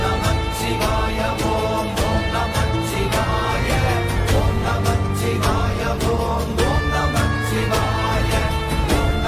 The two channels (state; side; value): identical; both; correlation 1.00